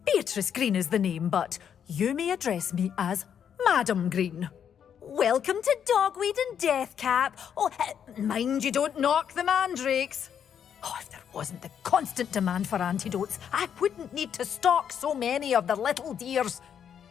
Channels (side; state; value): right; quieter; 8.4 dB